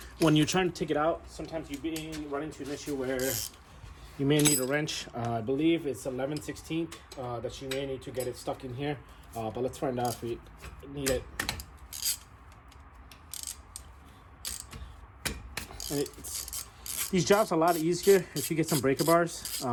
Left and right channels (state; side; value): identical; both; correlation 1.00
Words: when you're trying to take it out, sometimes you run into an issue where you may need a wrench. I believe it's 11/16 that you may need to get it stuck in here. But let's find out if we need it. And these jobs are a lot easier if you get some breaker bars.